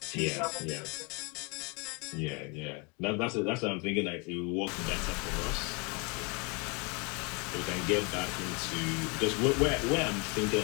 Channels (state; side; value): quieter; right; 31.4 dB